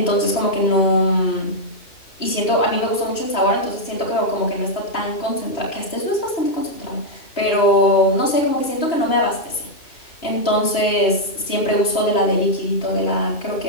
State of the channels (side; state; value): right; late; 3.0 ms